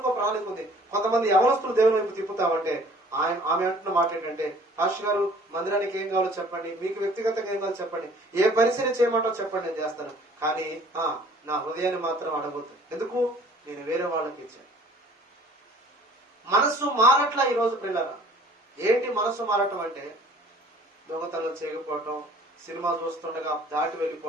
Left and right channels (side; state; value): both; normal; correlation 0.53